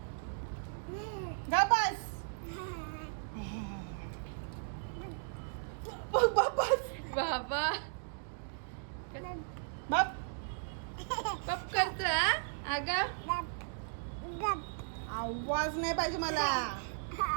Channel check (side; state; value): left; silent; digital silence